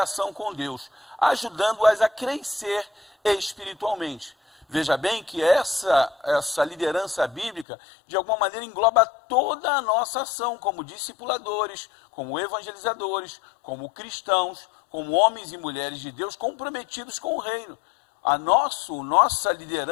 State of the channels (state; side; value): drops out; right; at 7.7 s